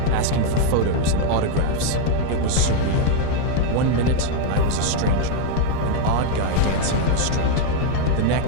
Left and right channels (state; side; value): different; both; correlation 0.00